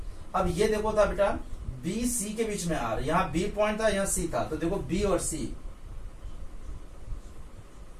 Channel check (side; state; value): both; identical; correlation 1.00